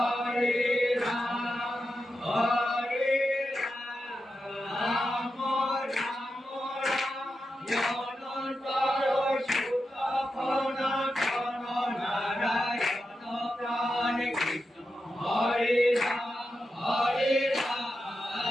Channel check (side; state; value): both; normal; correlation 0.89